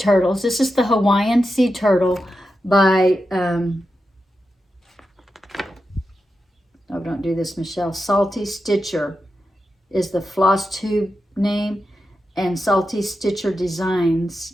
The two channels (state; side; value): normal; both; correlation 0.89